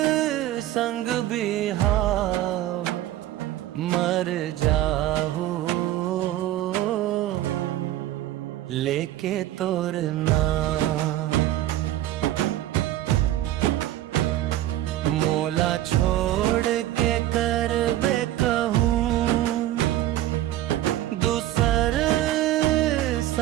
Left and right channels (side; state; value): left; quieter; 14.0 dB